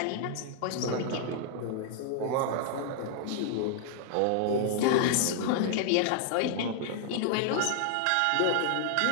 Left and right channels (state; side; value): different; both; correlation -0.01